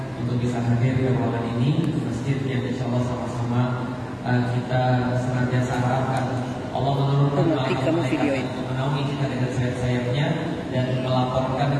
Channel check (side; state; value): both; identical; correlation 1.00